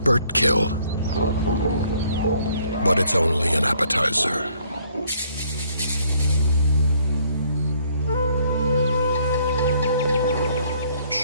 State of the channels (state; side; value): inverted; both; correlation -0.65